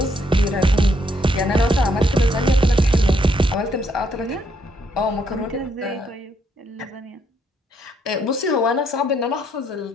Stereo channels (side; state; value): both; normal; correlation 0.73